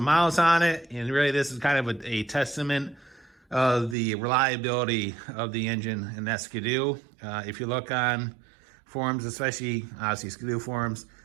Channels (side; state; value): left; drops out; at 4.0 s